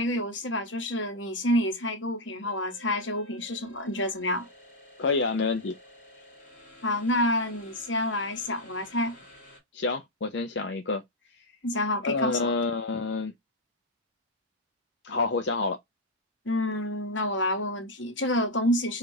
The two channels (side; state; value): both; normal; correlation -0.01